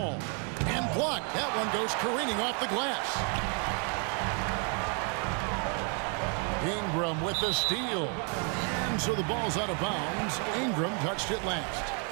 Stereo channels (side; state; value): left; quieter; 38.7 dB